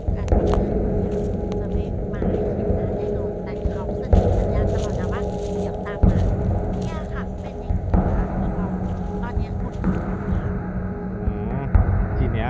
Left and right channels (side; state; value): both; identical; correlation 1.00